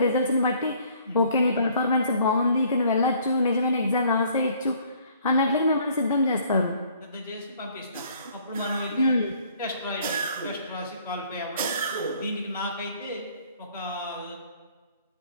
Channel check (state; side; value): inverted; both; correlation -0.59